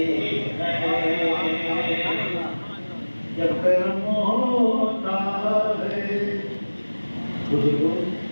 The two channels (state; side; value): inverted; both; correlation -1.00